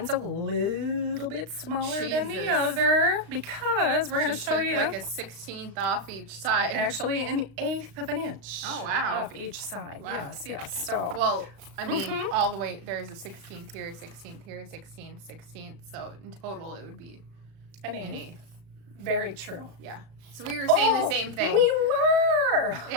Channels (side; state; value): left; late; 35 ms